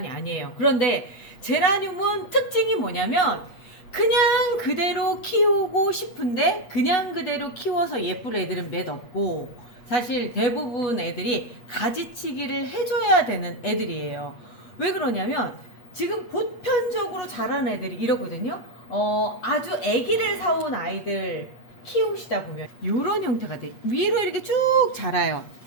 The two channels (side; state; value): right; late; 8.4 ms